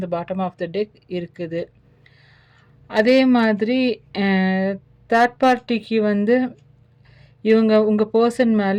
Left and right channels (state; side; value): identical; both; correlation 1.00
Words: பாட்டம் ஆஃப் த டெக் இருக்குது. அதே மாதிரி அ தேர்ட் பார்ட்டிக்கு வந்து இவங்க உங்க பெர்சன்